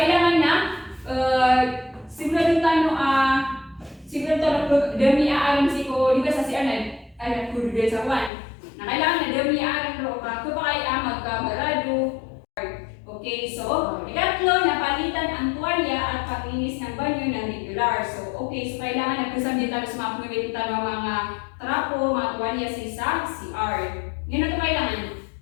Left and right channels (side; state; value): right; drops out; at 8.3 s